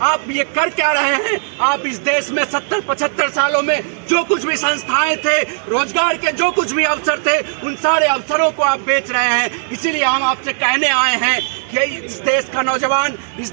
आप ये कर क्या रहे हैं? आप इस देश में 70-75 सालों में जो कुछ भी संस्थाएं थे, रोजगार के जो कुछ भी अवसर थे, उन सारे अवसरों को आप बेच रहे हैं। इसीलिए हम आपसे कहने आए हैं कि इस देश का नौजवान, इस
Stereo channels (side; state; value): left; silent; 57 dB below the other